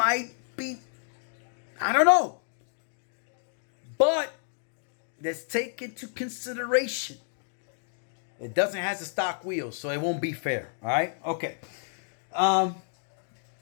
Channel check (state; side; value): silent; right; digital silence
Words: be, I don't know. But let's take into consideration it doesn't have the stock wheels, so it won't be fair. All right? Okay.